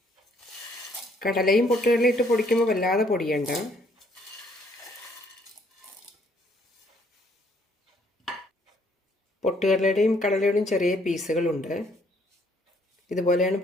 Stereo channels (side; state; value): both; normal; correlation 0.66